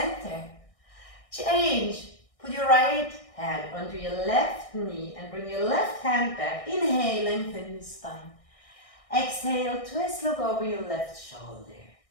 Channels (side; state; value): right; late; 1.6 ms